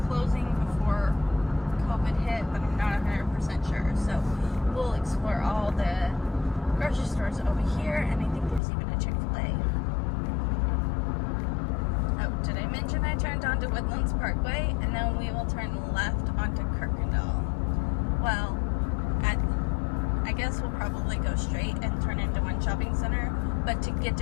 closing before COVID hit, but I'm not 100% sure. So we'll explore all the grocery stores over here, and I think there's even a Chick-fil-A. Oh, did I mention I turned onto Woodlands Parkway, and then we will turn left onto Kirkendall. Well, I guess we'll probably go straight and turn into one shopping center, but to get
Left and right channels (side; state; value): right; drops out; at 8.6 s